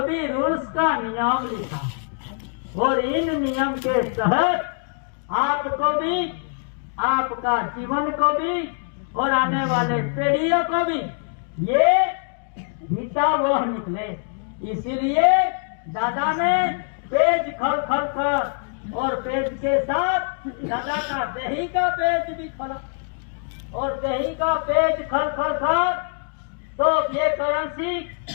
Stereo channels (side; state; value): right; silent; 58 dB below the other